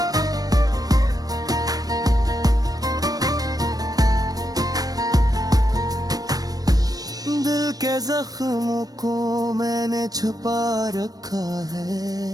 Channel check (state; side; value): late; left; 0.18 ms